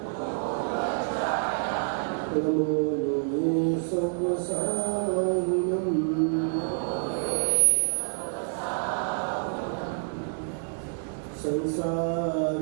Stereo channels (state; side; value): silent; left; digital silence